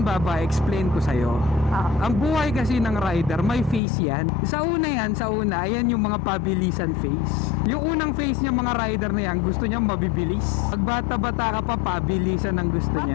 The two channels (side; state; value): right; drops out; at 3.8 s